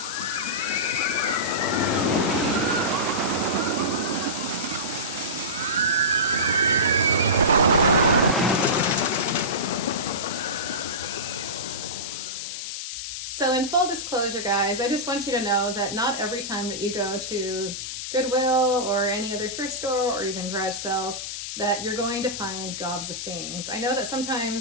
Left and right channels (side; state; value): left; noise; hiss, 6 dB below the sound